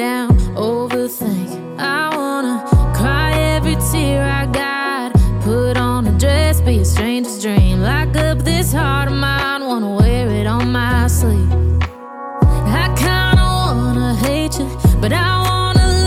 overthink. I wanna cry every tear I got. Put on a dress, be a stranger's dream. Lock up this heart of mine, wanna wear it on my sleeve. I kinda wanna hate you, but I wanna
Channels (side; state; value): both; identical; correlation 1.00